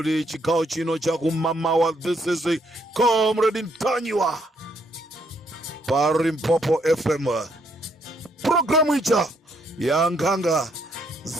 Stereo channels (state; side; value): normal; both; correlation 0.72